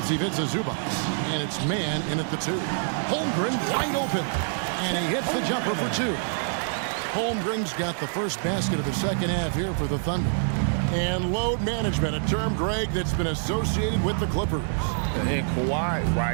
Ivica Zubac. And it's man in at the 2. Holmgren wide open. And he hits the jumper for 2. Holmgren's got the first basket of the second half here for the Thunder. And load management, a term, Greg, that's been associated with the Clippers. And Kawhi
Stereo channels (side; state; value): left; silent; digital silence